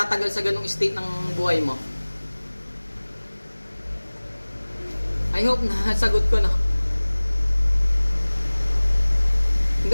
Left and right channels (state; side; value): inverted; both; correlation -1.00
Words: sa ganung state ng buhay mo. I hope na sagot ko na.